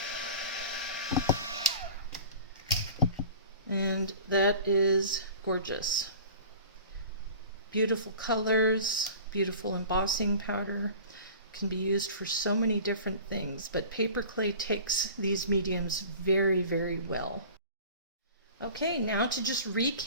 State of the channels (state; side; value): inverted; both; correlation -0.41